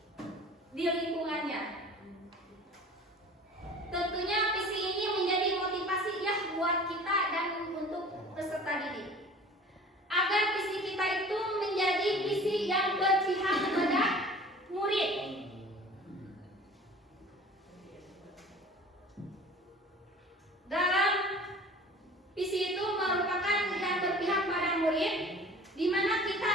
di lingkungannya. Tentunya visi ini menjadi motivasi ya buat kita dan untuk peserta didik, agar visi kita itu menjadi visi yang berpihak kepada murid. Dalam visi itu merupakan yang berpihak pada murid, di mana kita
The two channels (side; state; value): both; normal; correlation 0.44